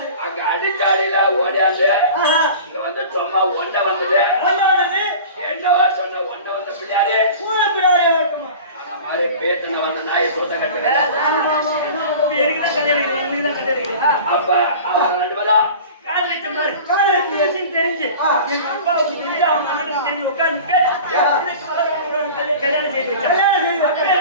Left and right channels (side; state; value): both; inverted; correlation -0.39